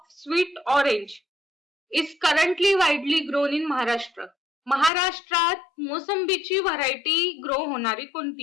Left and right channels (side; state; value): right; drops out; at 4.9 s